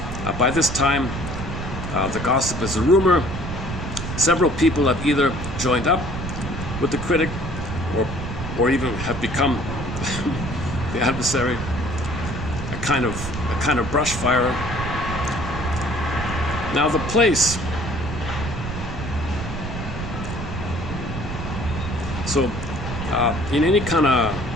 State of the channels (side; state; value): right; noise; rumble, 7 dB below the sound